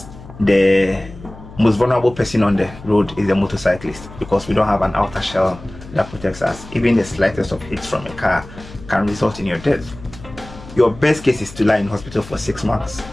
the most vulnerable person on the road is the motorcyclist because we don't have an outer shell that protects us. Even the slightest of hits from a car can result in your death. Your best case is to lie in hospital for 6 months.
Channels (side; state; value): left; noise; hum, 17 dB below the sound